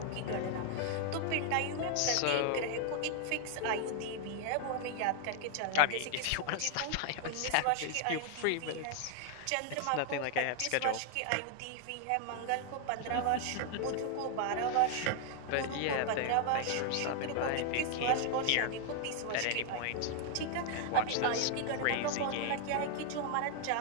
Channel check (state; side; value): different; both; correlation 0.00